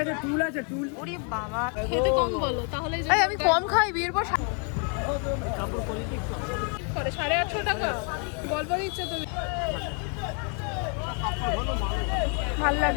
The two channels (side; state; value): right; quieter; 39.9 dB